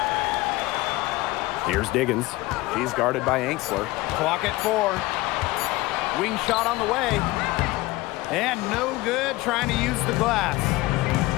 Here's Diggins. He's guarded by Angsler. Clock at 4. Wing shot on the way. And no good trying to use the glass.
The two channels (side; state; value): right; quieter; 19.9 dB